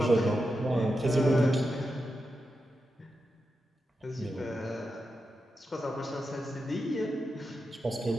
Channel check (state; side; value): normal; both; correlation 0.88